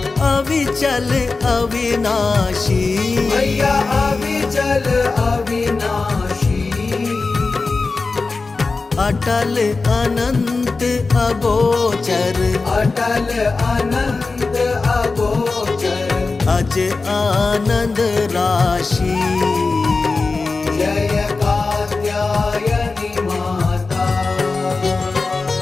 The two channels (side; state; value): right; quieter; 3.9 dB